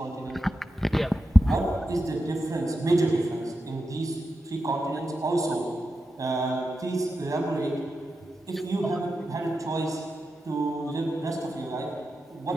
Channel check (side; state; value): both; normal; correlation 0.89